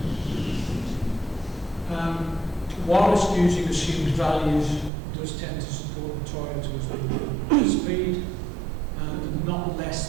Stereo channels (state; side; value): drops out; left; at 4.9 s